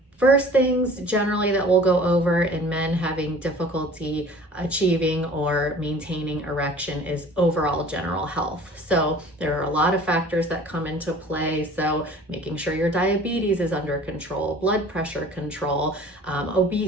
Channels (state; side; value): normal; both; correlation 0.47